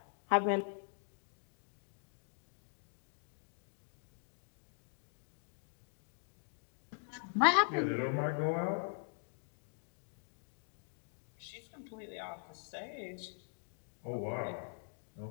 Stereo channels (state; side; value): silent; right; digital silence